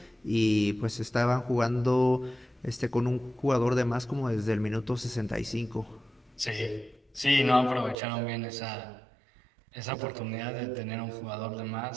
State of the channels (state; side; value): drops out; left; at 8.0 s